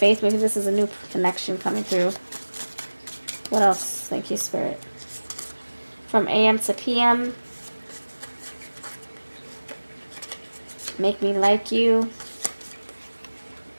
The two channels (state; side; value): inverted; both; correlation -1.00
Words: Maybe this is a new connection coming through. What else? Thank you, Spirit. From AM to PM. Make me like you.